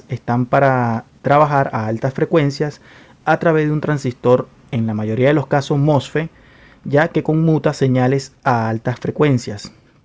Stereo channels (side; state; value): both; identical; correlation 1.00